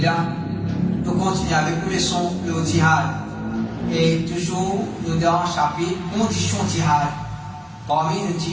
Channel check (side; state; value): both; identical; correlation 1.00